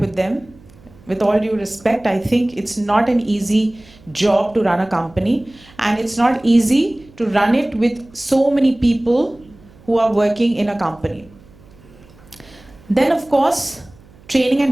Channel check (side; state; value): right; noise; hum, 25 dB below the sound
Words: them, with all due respect, I think it's not an easy job to run a company, and it's not easy to run it with so many people who are working in a company. Then, of course, training